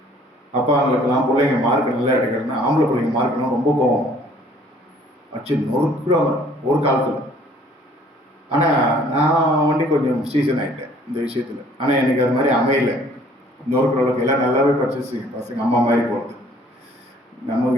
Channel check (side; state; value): both; normal; correlation 0.57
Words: அப்பா அவங்களுக்கெல்லாம் பிள்ளைங்க மார்க் நல்லா எடுக்கணும்னா, ஆம்பளை பிள்ளைங்க மார்க்கெல்லாம் ரொம்ப கோவம் அச்சு நொறுக்குறாங்க ஒரு காலத்தில். ஆனால் நான் வண்டி கொஞ்சம் சீசன் ஆகிட்டேன் இந்த விஷயத்தில். ஆனால் எனக்கு அது மாதிரி அமையலை. நொறுக்குற அளவுக்கு எல்லாம் நல்லாவே படிச்சிச்சு பசங்க, அம்மா மாதிரி போகிறது.